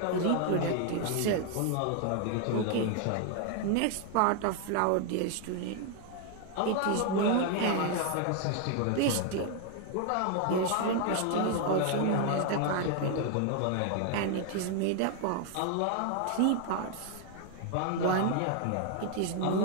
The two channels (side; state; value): both; different; correlation 0.00